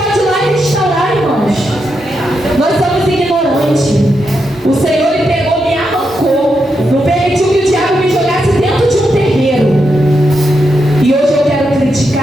ir lá e restaurar, irmãos. Nós somos ignorantes. O Senhor ele pegou, me arrancou. Não permitiu que o diabo me jogasse dentro de um terreiro. E hoje eu quero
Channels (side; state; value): both; normal; correlation 0.84